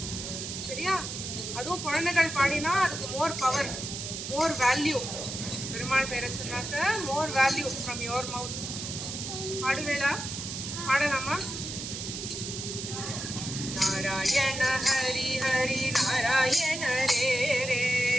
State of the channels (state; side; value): noise; right; hiss, 6 dB below the sound